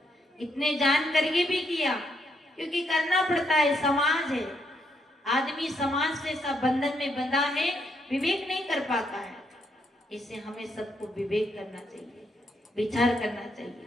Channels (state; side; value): normal; both; correlation 0.76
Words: इतने जान करके भी किया, क्योंकि करना पड़ता है, समाज है, आदमी समाज से सब बंधन में बंधा है, विवेक नहीं कर पाता है। इससे हमें सबको विवेक करना चाहिए, विचार करना चाहिए।